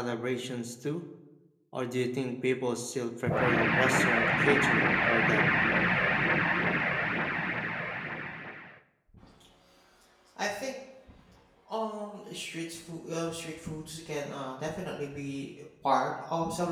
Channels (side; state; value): both; identical; correlation 1.00